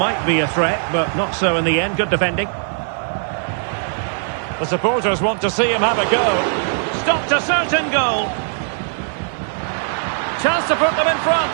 be a threat, but not so in the end. Good defending. The supporters want to see him have a go. Stopped a certain goal. Chance to put them in front.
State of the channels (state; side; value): silent; left; digital silence